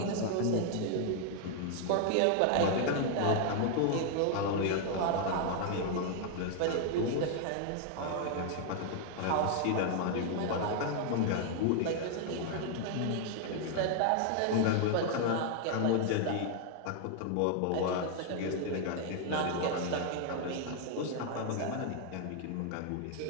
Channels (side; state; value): both; different; correlation 0.00